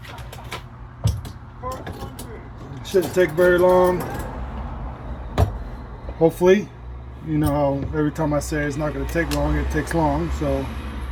Shouldn't take very long. Hopefully, you know how every time I say it's not going to take long, it takes long. So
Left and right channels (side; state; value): both; identical; correlation 1.00